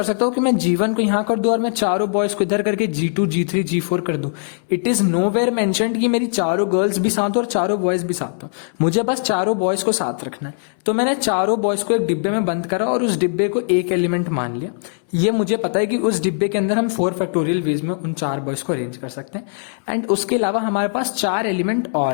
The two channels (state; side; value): silent; right; 66 dB below the other